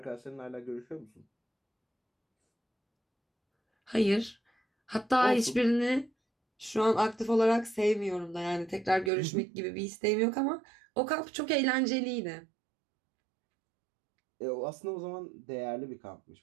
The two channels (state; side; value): drops out; left; at 9.1 s